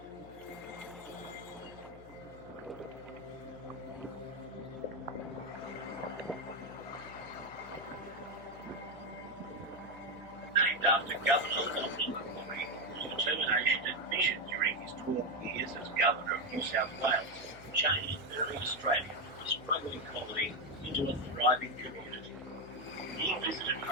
named after Governor Wellington, whose determination and vision during his 12 years as Governor of New South Wales changed early Australia from a struggling colony into a thriving community. He visited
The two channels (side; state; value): left; noise; hum, 19 dB below the sound